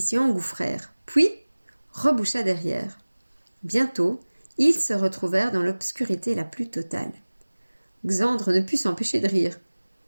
s'y engouffrèrent, puis reboucha derrière. Bientôt, ils se retrouvèrent dans l'obscurité la plus totale. Xandre ne put s'empêcher de rire.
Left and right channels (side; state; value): both; inverted; correlation -1.00